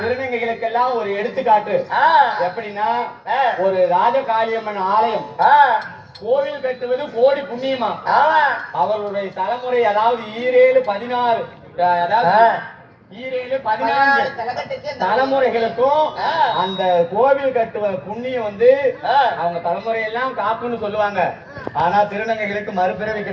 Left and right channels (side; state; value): both; identical; correlation 1.00